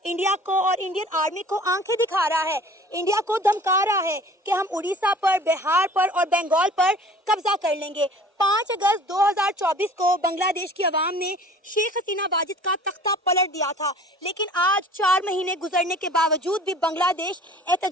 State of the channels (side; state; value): both; normal; correlation 0.47